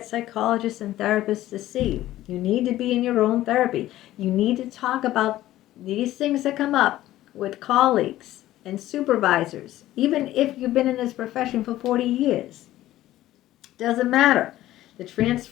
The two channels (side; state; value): right; quieter; 14.7 dB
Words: psychologists and therapists to see. You need to be in your own therapy. You need to talk about these things that come up with colleagues and supervisors, even if you've been in this profession for 40 years. Doesn't matter. The